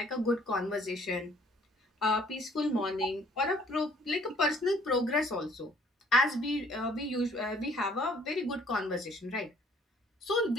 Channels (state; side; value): normal; both; correlation 0.59